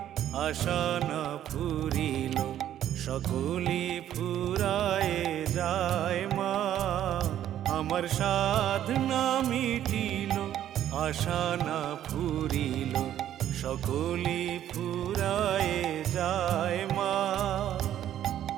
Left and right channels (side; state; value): left; quieter; 11.3 dB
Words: আশা না ফুরিল, সকলি ফুরায়ে যায় মা। আমার সাধ না মিটিল, আশা না ফুরিল, সকলি ফুরায়ে যায় মা।